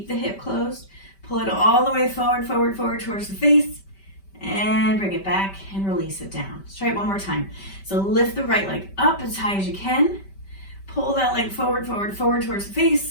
the hip closed. Pull it all the way forward, forward, forward towards the face. And bring it back and release it down. Let's try it one more time. So lift the right leg up as high as you can. Pull that leg forward, forward, forward towards the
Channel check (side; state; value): right; late; 5.1 ms